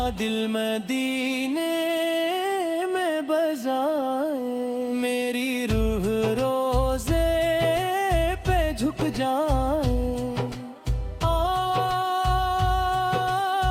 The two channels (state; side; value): identical; both; correlation 1.00